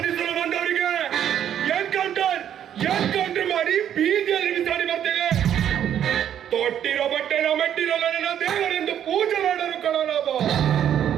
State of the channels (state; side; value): quieter; left; 9.9 dB